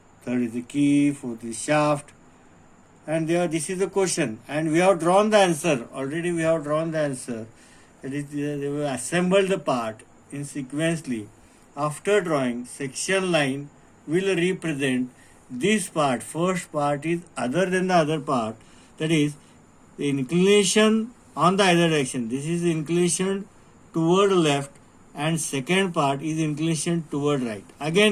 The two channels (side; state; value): both; identical; correlation 1.00